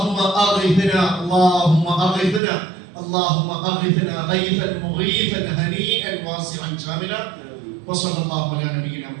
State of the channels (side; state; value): left; drops out; at 2.4 s